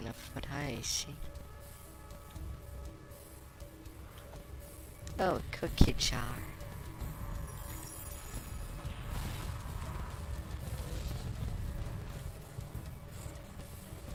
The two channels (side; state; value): both; identical; correlation 1.00